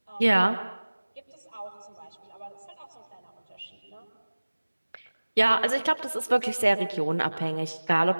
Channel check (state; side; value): inverted; both; correlation -1.00